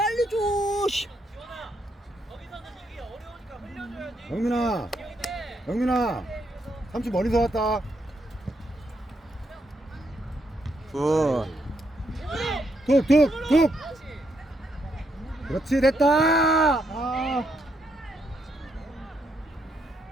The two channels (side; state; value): both; normal; correlation 0.77